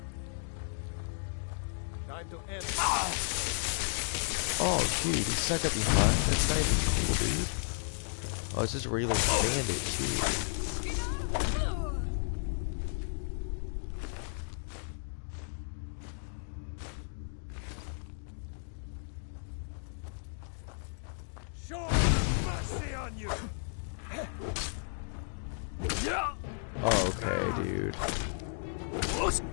Time to end. Oh, dude, he stuck up behind. That's not even cool, dude. Oh, it's just a regular bandit, too. Show mercy on you. Oh, okay, dude.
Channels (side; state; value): right; silent; digital silence